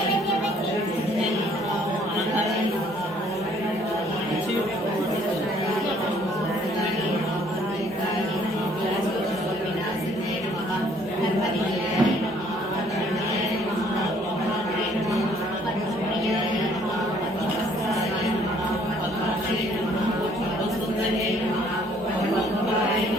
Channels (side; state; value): both; normal; correlation 0.61